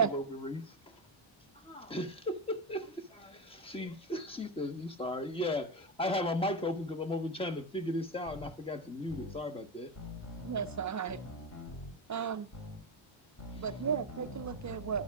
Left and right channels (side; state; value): both; normal; correlation 0.15